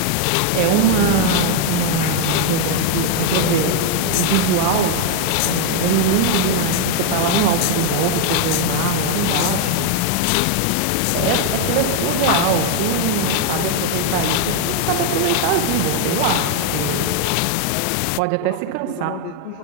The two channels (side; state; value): both; different; correlation 0.01